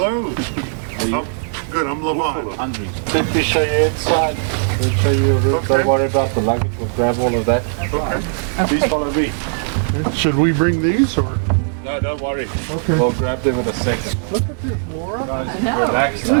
Good, I'm Lavon. Let me show you inside. We'll show you a room. Okay. Don't worry about the luggage. We'll grab all of that. Okay. Please follow me. Should we bring these or? No, don't worry. Okay. We'll grab them in a second. Look at this, Laura. Guys, know. relax. Isn't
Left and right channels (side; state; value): left; silent; digital silence